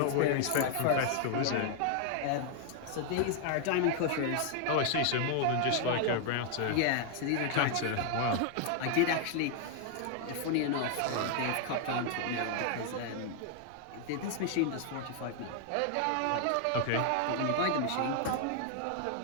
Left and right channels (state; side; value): different; both; correlation 0.00